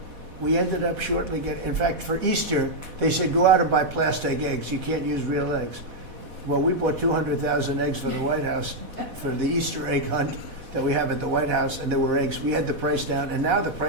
we ended up shortly getting. In fact, for Easter, they said go out and buy plastic eggs. You can't use real eggs. Well, we bought 200,000 eggs for the White House for the Easter egg hunt that we have at the White House, and there were eggs. We had the price down, and now the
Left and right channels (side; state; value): left; late; 4.1 ms